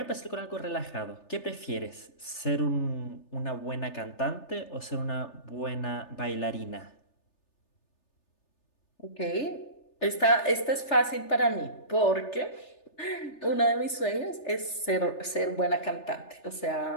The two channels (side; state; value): right; late; 3.3 ms